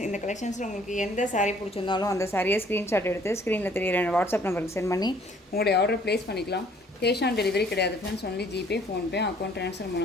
இந்த கலெக்ஷன்ஸில் உங்களுக்கு எந்த சாரீ பிடிச்சிருந்தாலும் அந்த சாரியை ஸ்க்ரீன்ஷாட் எடுத்து ஸ்க்ரீனில் தெரியிற வாட்ஸ்அப் நம்பருக்கு சென்ட் பண்ணி உங்களுடைய ஆர்டர் ப்ளேஸ் பண்ணிக்கலாம். கேஷ் ஆன் டெலிவரி கிடையாது friends, only GPay, PhonePe, account transfer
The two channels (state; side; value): normal; both; correlation 0.59